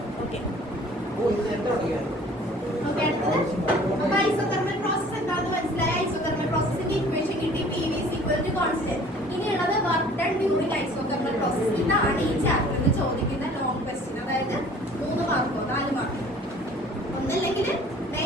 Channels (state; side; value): normal; both; correlation 0.50